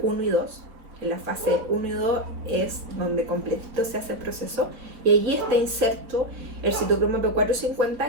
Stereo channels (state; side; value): late; left; 5.1 ms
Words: y 2. En la fase 1 y 2 es donde completito se hace el proceso, y allí está inserto el citocromo